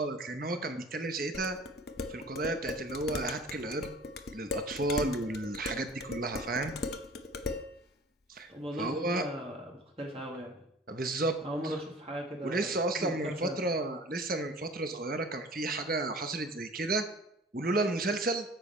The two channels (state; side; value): normal; both; correlation 0.45